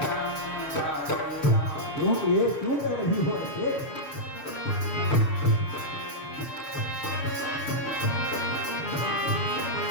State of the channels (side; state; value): right; late; 6.8 ms